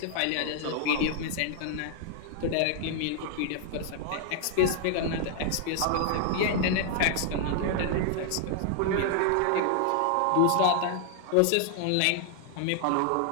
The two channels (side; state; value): both; different; correlation 0.00